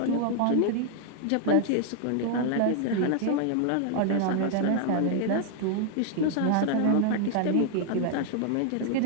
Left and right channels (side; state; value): both; different; correlation 0.00